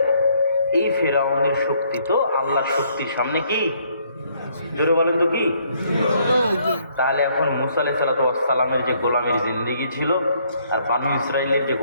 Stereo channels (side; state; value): both; inverted; correlation -0.67